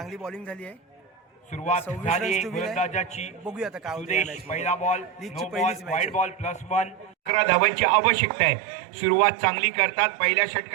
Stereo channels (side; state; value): left; drops out; at 7.3 s